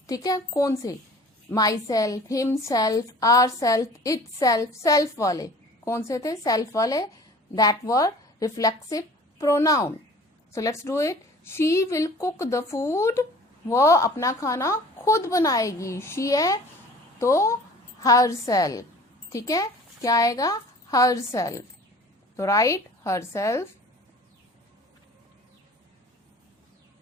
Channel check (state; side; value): normal; both; correlation 0.46